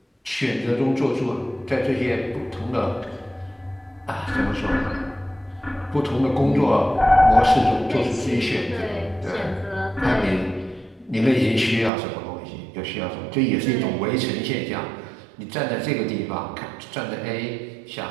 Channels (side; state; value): left; drops out; at 11.9 s